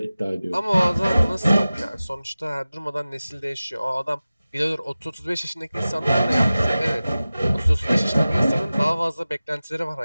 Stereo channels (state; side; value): inverted; both; correlation -0.96